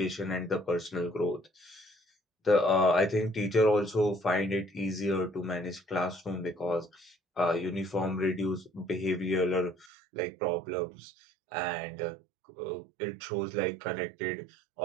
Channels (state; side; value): drops out; left; at 9.9 s